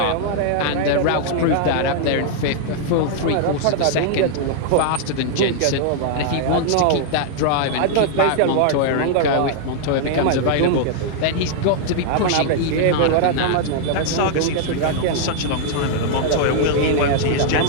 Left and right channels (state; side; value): different; both; correlation -0.01